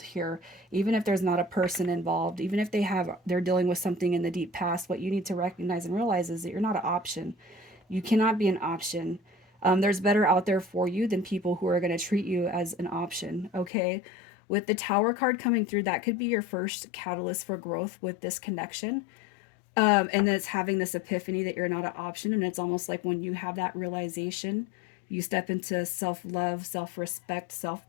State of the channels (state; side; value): drops out; right; at 13.7 s